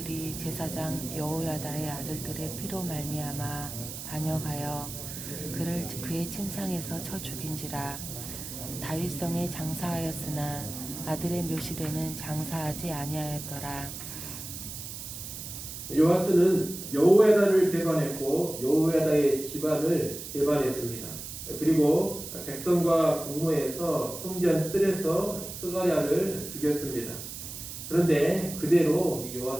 제사장 여호야다의 아들들의 피로 말미암아 반역하여 그를 그의 침상에서 쳐 죽인지라. 다윗성에 장사하였으나 아들의 묘실에는 장사하지 아니하였더라. 요아스는 여호야다를 배반했고 여호야다의 집안을 배반했습니다. 그리고 백성과 공모해서 성전 뜰에서 스가랴를 죽였습니다. 그런데 그대로 이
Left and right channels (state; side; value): noise; right; hiss, 9 dB below the sound